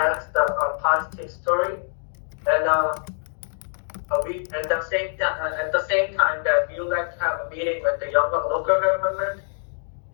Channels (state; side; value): silent; right; digital silence